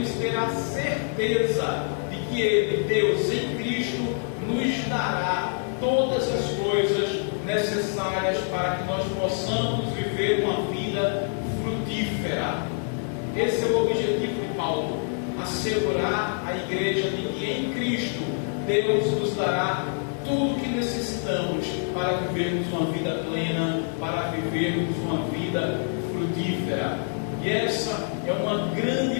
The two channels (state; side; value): silent; right; 61 dB below the other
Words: ter a certeza de que Ele, Deus em Cristo, nos dará todas as coisas necessárias para que nós possamos viver uma vida frutífera. Esse é o objetivo de Paulo, assegurar a igreja de que em Cristo Deus nos dará tudo o que necessitamos para vivermos uma vida plena, para vivermos uma vida frutífera. E essa é uma